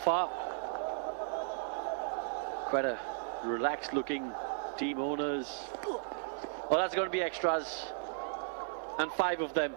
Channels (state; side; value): silent; left; digital silence